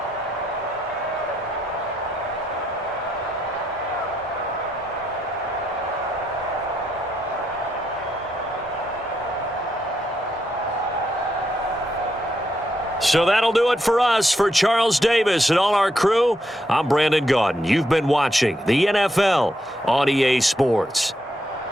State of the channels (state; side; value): normal; both; correlation 0.79